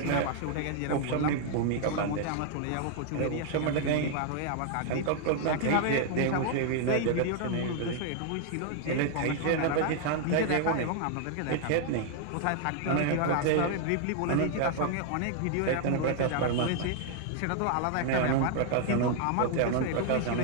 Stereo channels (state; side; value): different; both; correlation 0.00